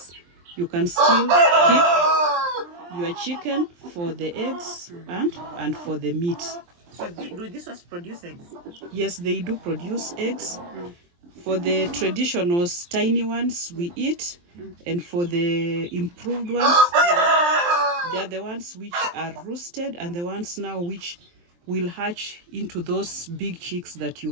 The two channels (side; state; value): left; late; 23 ms